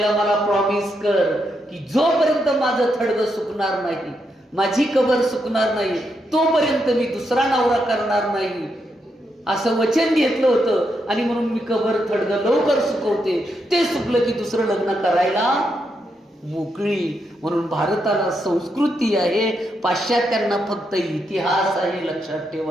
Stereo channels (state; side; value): normal; both; correlation 0.81